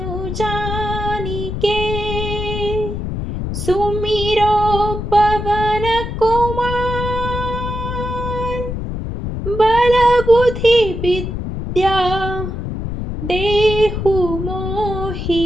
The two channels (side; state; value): left; noise; rumble, 5 dB below the sound